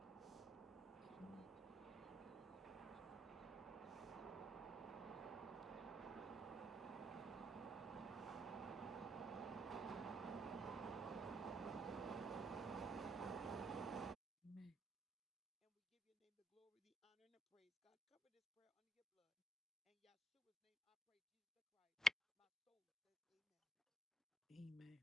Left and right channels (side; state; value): both; normal; correlation 0.77